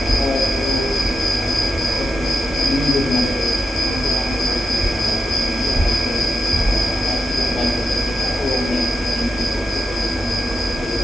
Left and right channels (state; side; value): normal; both; correlation 0.85